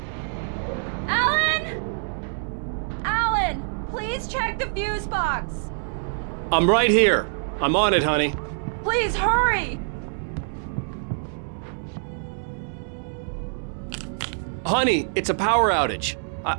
Alan! Alan, please check the fuse box. I'm right here. I'm on it, honey. Please hurry. Honey, it's a power outage.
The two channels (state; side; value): silent; left; digital silence